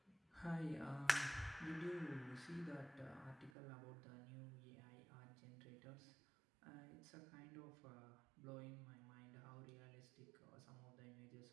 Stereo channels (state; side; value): drops out; left; at 3.5 s